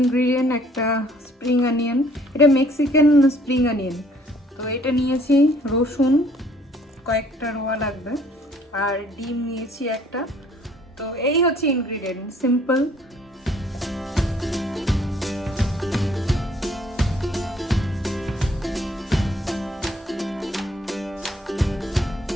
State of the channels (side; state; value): both; normal; correlation 0.60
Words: একটা স্প্রিং অনিয়ন, এটা মেক্সিকান স্প্রিং অনিয়ন। তো এটা নিয়েছি, রসুন কয়েকটা রোয়া লাগবে, আর ডিম নিয়েছি একটা। তো এই হচ্ছে ইনগ্রিডিয়েন্ট, সিম্পল।